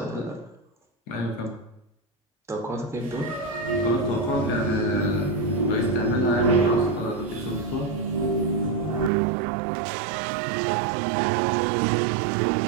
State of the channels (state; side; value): drops out; left; at 9.1 s